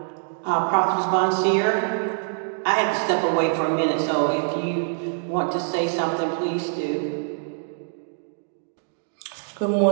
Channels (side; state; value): left; silent; digital silence